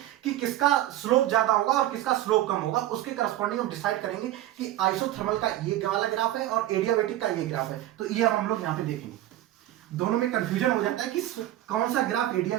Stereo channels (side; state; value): left; quieter; 14.2 dB